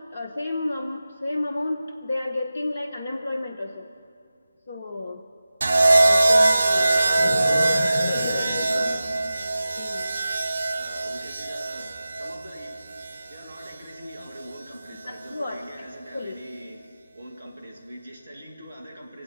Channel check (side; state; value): both; inverted; correlation -0.95